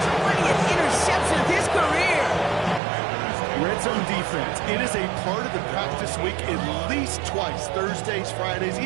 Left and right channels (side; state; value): left; drops out; at 2.8 s